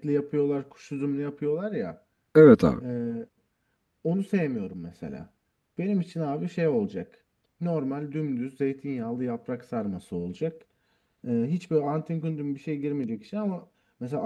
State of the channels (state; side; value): identical; both; correlation 1.00